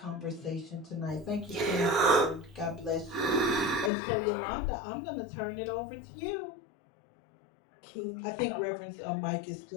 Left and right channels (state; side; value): drops out; right; at 3.9 s